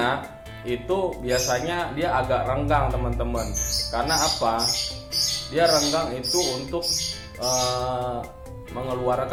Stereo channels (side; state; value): both; identical; correlation 1.00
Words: itu biasanya dia agak renggang, teman-teman. Karena apa? Dia renggang itu untuk